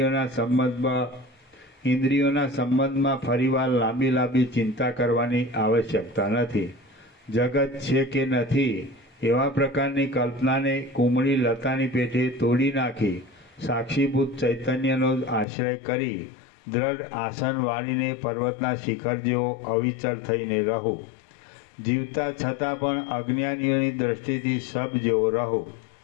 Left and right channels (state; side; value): drops out; right; at 15.5 s